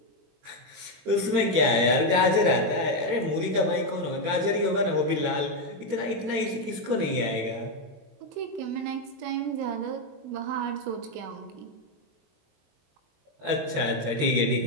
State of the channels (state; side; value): late; left; 21 ms